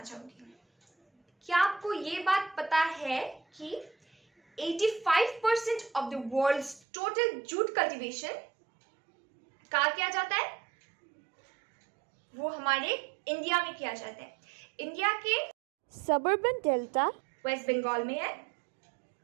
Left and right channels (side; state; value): left; drops out; at 6.8 s